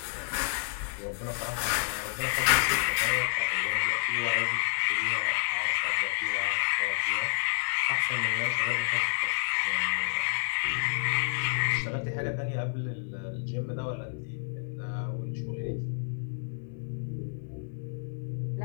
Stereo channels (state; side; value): silent; right; digital silence